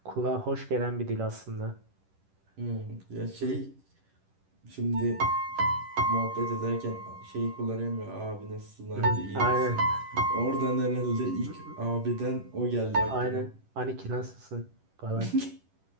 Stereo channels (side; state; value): left; late; 10 ms